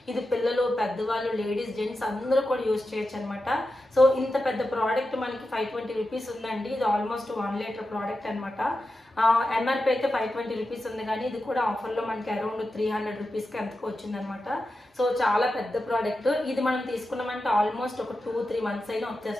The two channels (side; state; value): both; normal; correlation 0.90